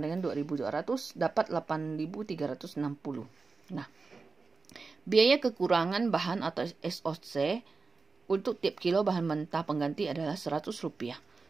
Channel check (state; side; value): quieter; left; 4.2 dB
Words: dengan 2.200, dapat 8.360. Nah, biaya kekurangan bahan atau SOC untuk tiap kilo bahan mentah pengganti adalah Rp100.